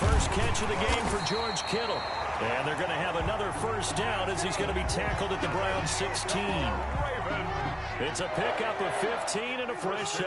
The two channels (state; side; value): identical; both; correlation 1.00